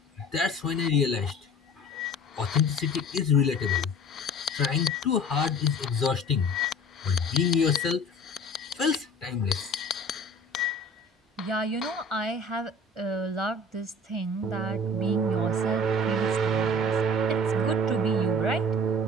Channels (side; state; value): both; normal; correlation 0.44